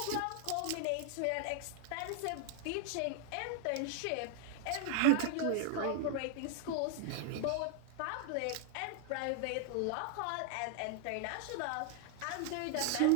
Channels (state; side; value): different; both; correlation 0.00